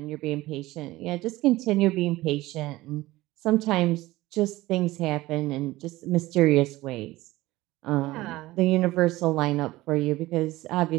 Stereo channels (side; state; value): left; quieter; 18.2 dB